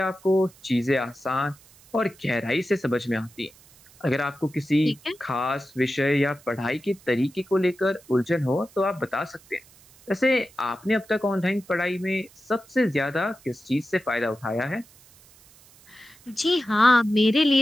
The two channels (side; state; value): right; noise; hiss, 26 dB below the sound